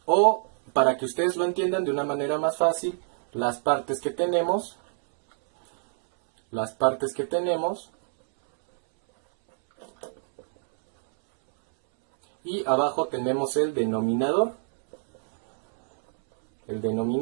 o para que ustedes lo entiendan de una manera más fácil, las partes que tenemos, y abajo tenemos el denominador. El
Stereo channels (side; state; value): left; silent; 62 dB below the other